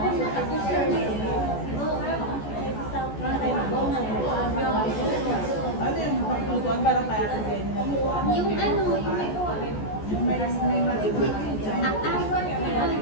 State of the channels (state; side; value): late; right; 14 ms